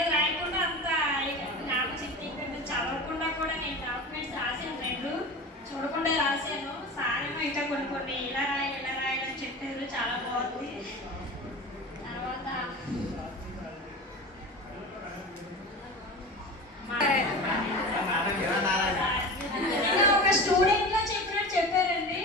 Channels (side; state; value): both; normal; correlation 0.31